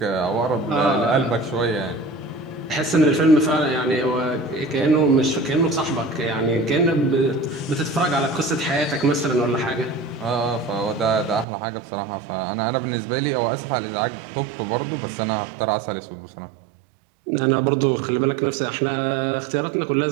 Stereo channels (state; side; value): drops out; left; at 11.5 s